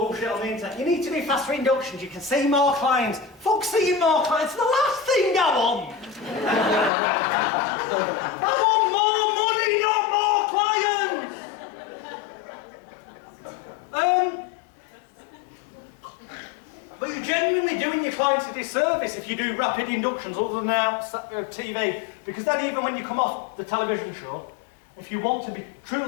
on the internet. You need to do faster inductions. You can see more clients. Fuck seeing more clients. It's the last thing I want. I want more money, not But you're genuinely doing your clients a disservice if you do rapid inductions other than out TV, because then even when you come off the television show, if you want to be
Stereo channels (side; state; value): right; drops out; at 6.9 s